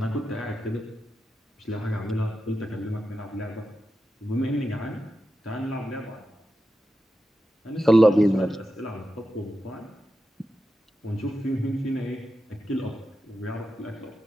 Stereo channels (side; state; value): both; normal; correlation 0.90